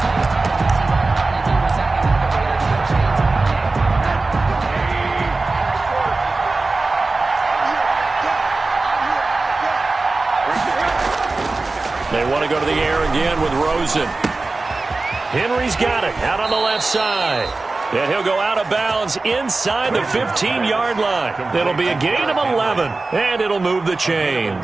They want to go to the air again with Rosen. Henry's got it out on the left side. And he'll go out of bounds inside the 15-yard line. It'll be a gain of 11, and it'll move the chains.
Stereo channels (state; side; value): quieter; left; 3.5 dB